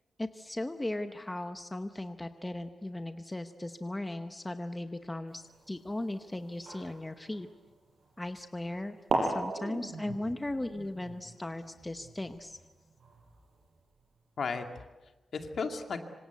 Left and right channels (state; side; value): normal; both; correlation 0.93